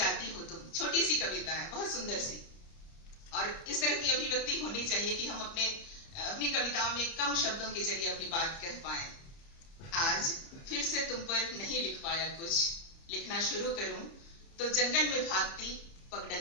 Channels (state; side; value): late; right; 30 ms